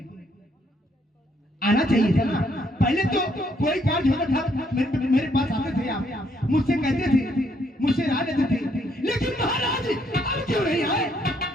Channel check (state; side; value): normal; both; correlation 0.70